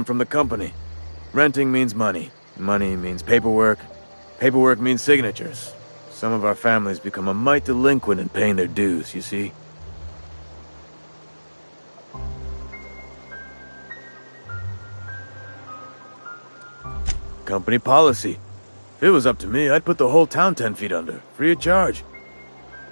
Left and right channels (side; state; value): both; inverted; correlation -1.00